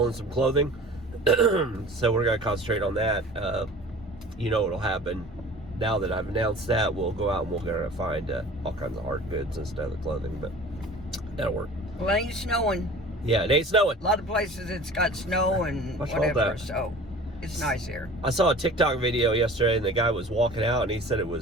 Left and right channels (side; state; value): both; normal; correlation 0.43